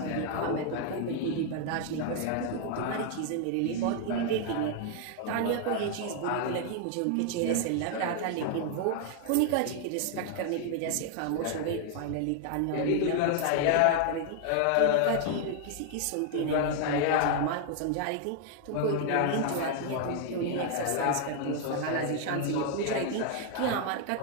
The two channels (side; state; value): both; different; correlation 0.00